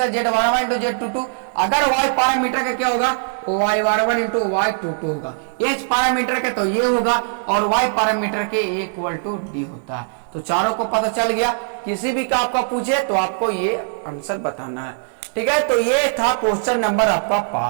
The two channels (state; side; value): silent; left; digital silence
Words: Z11 into Z22, अगर Y पैरामीटर का क्या होगा, Y11 इंटू Y22 होगा। H पैरामीटर के तो ये होगा, और Y पैरामीटर के इक्वल टू D होता है। तो चारों को पता चल गया, किसी भी का आपका पूछे तो आपको ये आंसर बताना है, ठीक है। तो ये था क्वेश्चन नंबर आपका